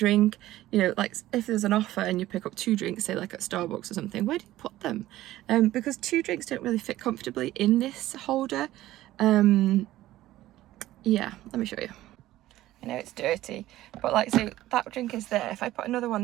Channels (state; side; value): quieter; left; 15.2 dB